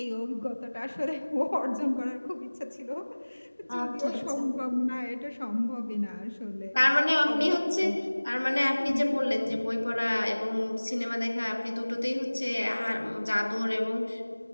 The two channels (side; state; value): both; inverted; correlation -1.00